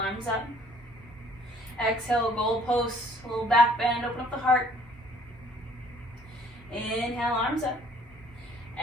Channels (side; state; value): both; normal; correlation 0.58